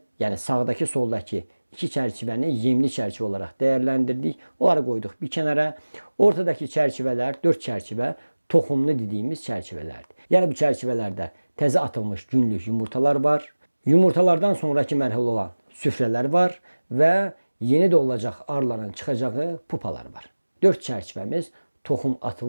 yəni sağdakı, soldakı 2 çərçivəni yemli çərçivə olaraq dəyərləndirdik. Onları qoyduq bir kənara. Ortadakı çərçivələr, 4 çərçivə toxumlu dediyimiz çərçivələrdir. Yəni bu çərçivələrdə təzə atılmış günlük yumurtalar var. Yumurtalardan sonraki mərhələ olan süfrələr var və yeni doğulacaq arıların çıxacağı pupalar var. 4 çərçivəmiz toxum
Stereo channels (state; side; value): inverted; both; correlation -1.00